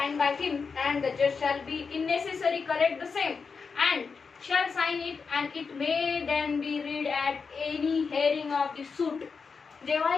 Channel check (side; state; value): right; quieter; 5.2 dB